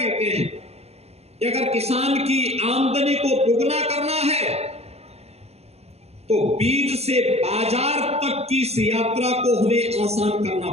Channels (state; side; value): late; left; 0.30 ms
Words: हैं कि अगर किसान की आमदनी को दुगना करना है तो बीज से बाजार तक की इस यात्रा को हमें आसान करना